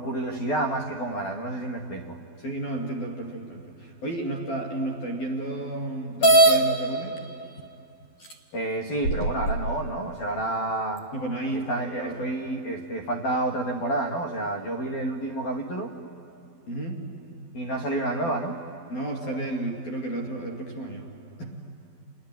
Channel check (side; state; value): right; late; 12 ms